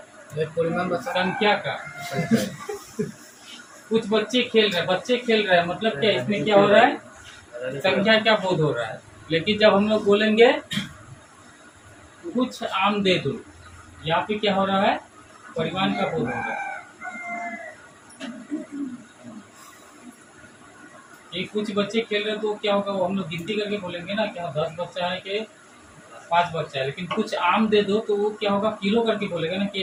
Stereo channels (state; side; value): identical; both; correlation 1.00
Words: परिमाण बचा संख्या का। कुछ बच्चे खेल रहे हैं मतलब क्या, इसमें क्या हो रहा है, संख्या का बोध हो रहा है। लेकिन जब हम लोग बोलेंगे कुछ आम दे दो, यहाँ पे क्या हो रहा है, परिमाण का बोध हो रहा है। ये कुछ बच्चे खेल रहे हैं तो क्या होगा, वो हम लोग गिनती करके बोलेंगे ना, क्या 10 बच्चा है कि 5 बच्चा है। लेकिन कुछ आम दे दो तो वो क्या होगा, किलो करके बोलेगा ना, कि